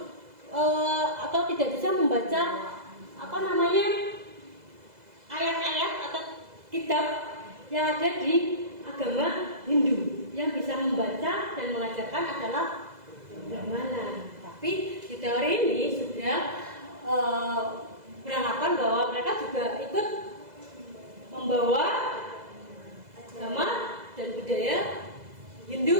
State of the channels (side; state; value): left; late; 2.0 ms